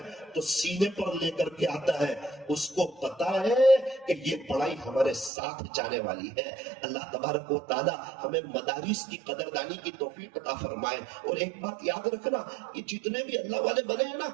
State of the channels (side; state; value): left; drops out; at 5.3 s